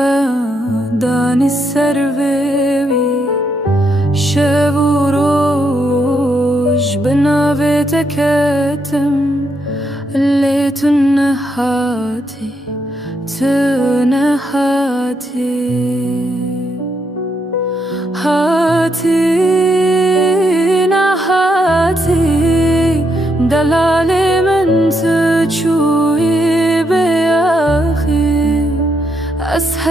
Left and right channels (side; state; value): both; normal; correlation 0.78